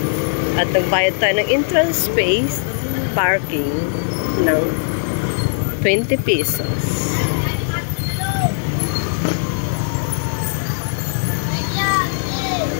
At nagbayad tayo ng entrance space, parking ng 20 pesos.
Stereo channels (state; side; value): silent; right; 66 dB below the other